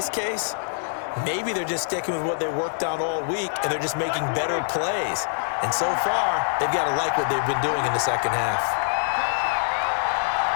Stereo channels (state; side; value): silent; right; digital silence